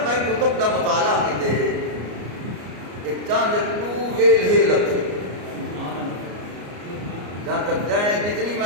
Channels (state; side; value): late; left; 34 ms